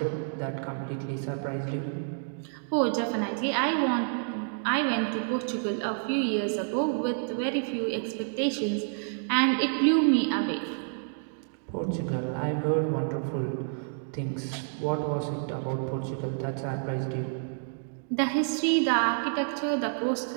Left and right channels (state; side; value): silent; left; digital silence